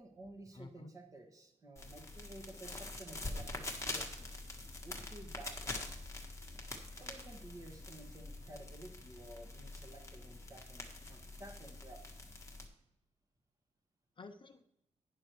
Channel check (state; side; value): normal; both; correlation 0.41